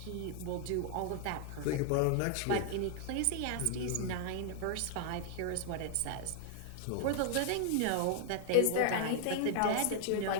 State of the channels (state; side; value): different; both; correlation 0.00